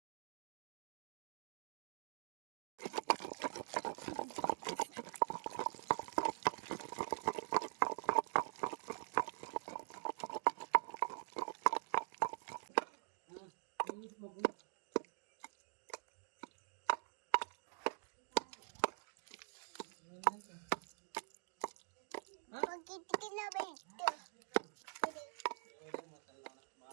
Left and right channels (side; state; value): left; silent; digital silence